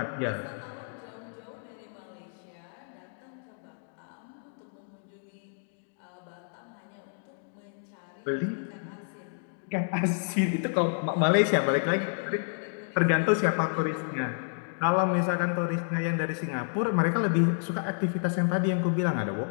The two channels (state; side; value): silent; right; digital silence